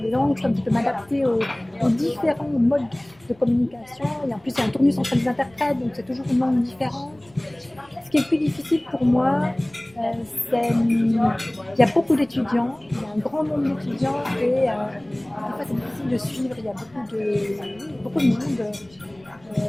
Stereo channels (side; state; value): left; noise; rumble, 29 dB below the sound